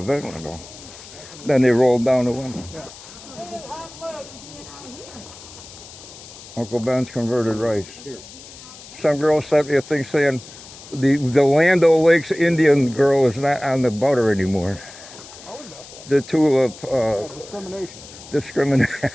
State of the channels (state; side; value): noise; left; hiss, 17 dB below the sound